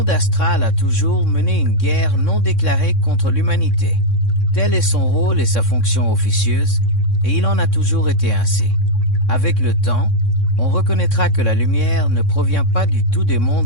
astral a toujours mené une guerre non déclarée contre l'humanité. Tel est son rôle et sa fonction officieuse, et il en a toujours été ainsi. Avec le temps, on reconnaîtra que la lumière ne provient pas du tout des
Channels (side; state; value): right; late; 3.6 ms